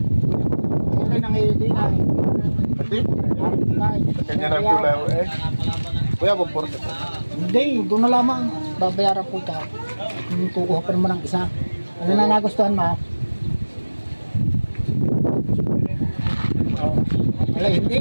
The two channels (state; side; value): inverted; both; correlation -1.00